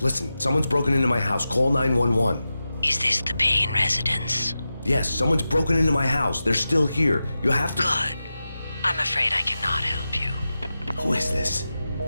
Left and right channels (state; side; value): inverted; both; correlation -0.92